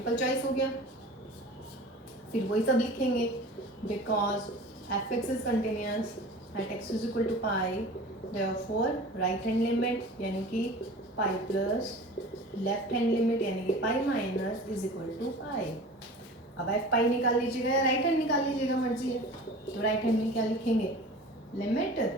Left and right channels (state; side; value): normal; both; correlation 0.39